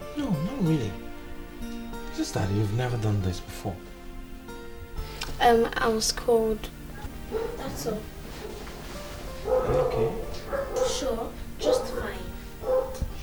No, not really. It's just that you've never done this before. I was cold. That's all. Are you okay? Sure, just fine.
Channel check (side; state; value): both; identical; correlation 1.00